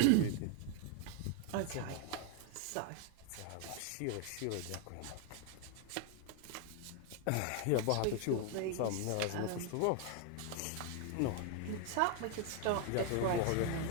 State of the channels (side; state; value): both; different; correlation 0.00